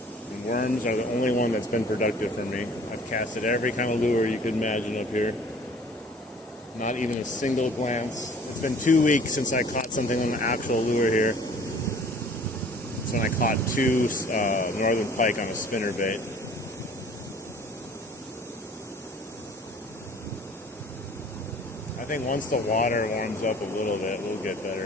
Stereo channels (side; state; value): both; normal; correlation 0.51